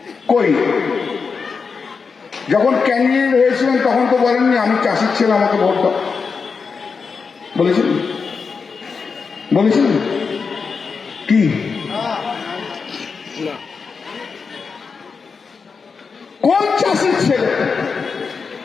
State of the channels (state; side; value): quieter; right; 5.2 dB